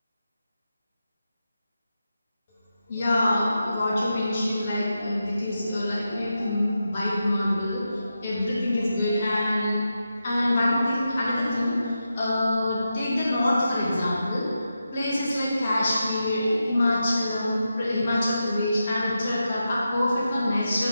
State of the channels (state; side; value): inverted; both; correlation -0.89